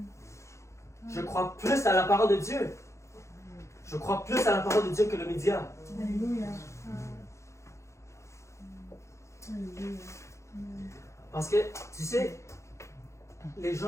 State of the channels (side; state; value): right; late; 0.14 ms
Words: Je crois plus à la parole de Dieu. Je crois plus à la parole de Dieu que le média. Alléluia. Parce que, tu sais, les